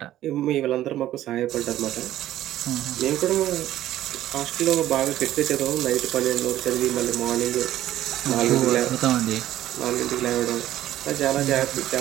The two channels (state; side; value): quieter; left; 13.4 dB